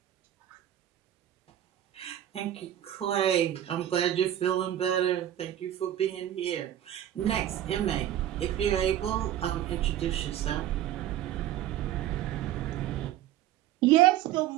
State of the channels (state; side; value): quieter; left; 12.0 dB